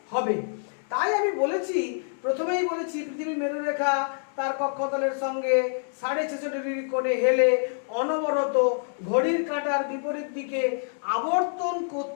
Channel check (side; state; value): right; silent; digital silence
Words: হবে। তাই আমি বলেছি, প্রথমেই বলেছি পৃথিবীর মেরুরেখা তার কক্ষতলের সঙ্গে 66.5 ডিগ্রি কোণে হেলে অনবরত ঘড়ির কাঁটার বিপরীত দিকে আবর্তন